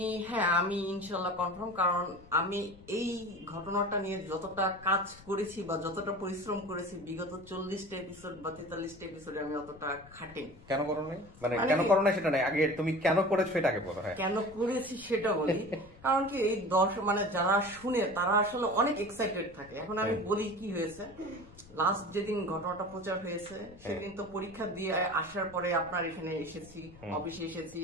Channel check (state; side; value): noise; left; rumble, 22 dB below the sound